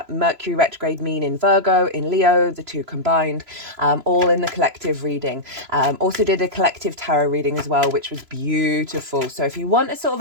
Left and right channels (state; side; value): late; left; 3.0 ms